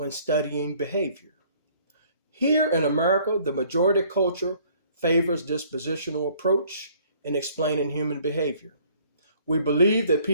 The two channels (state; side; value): inverted; both; correlation -0.58